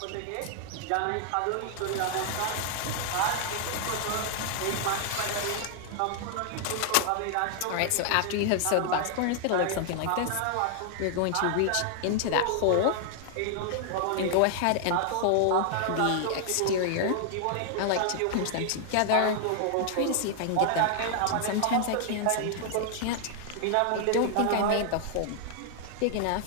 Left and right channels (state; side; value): different; both; correlation 0.00